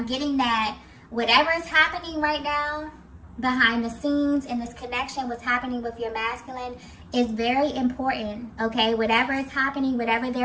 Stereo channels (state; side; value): identical; both; correlation 1.00